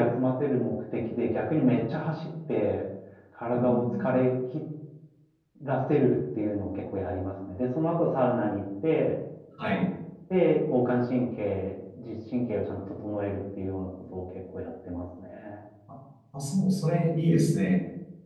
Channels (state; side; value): identical; both; correlation 1.00